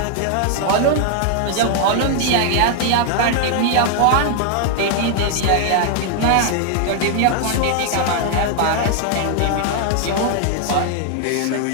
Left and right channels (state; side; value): different; both; correlation 0.00